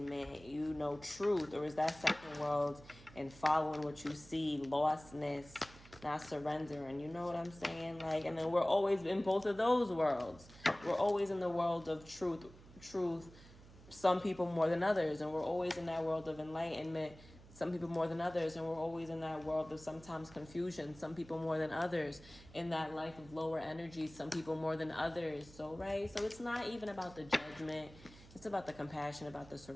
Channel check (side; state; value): right; noise; hum, 20 dB below the sound